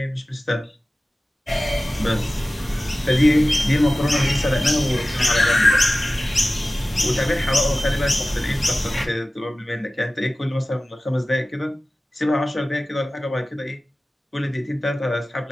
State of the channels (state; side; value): normal; both; correlation 0.96